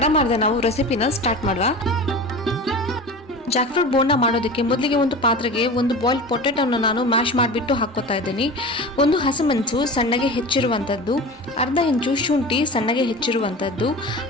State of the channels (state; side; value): normal; both; correlation 0.33